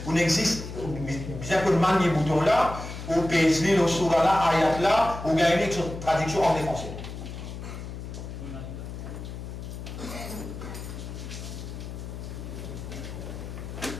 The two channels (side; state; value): left; noise; hum, 9 dB below the sound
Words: On existe, bien que le manier bouton là, ou PSD, le soura là, ayat là, ou gagner une traduction en français.